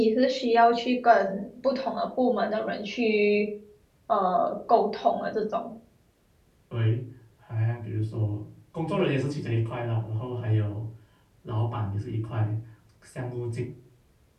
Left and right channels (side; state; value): both; identical; correlation 1.00